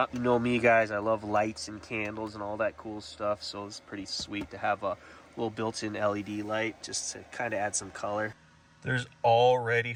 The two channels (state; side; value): identical; both; correlation 1.00